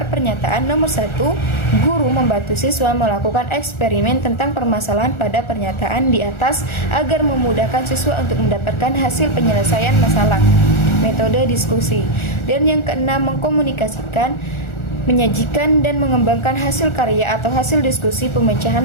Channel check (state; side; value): late; right; 1.4 ms